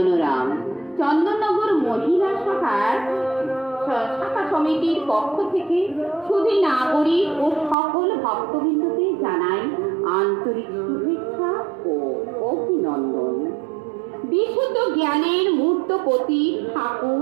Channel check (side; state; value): left; drops out; at 7.8 s